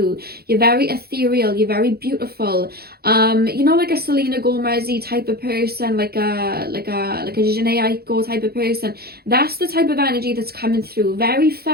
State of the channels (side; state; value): left; late; 0.46 ms